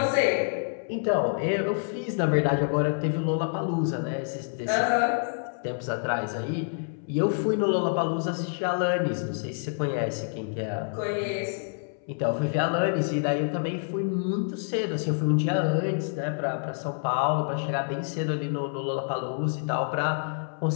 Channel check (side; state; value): right; silent; 60 dB below the other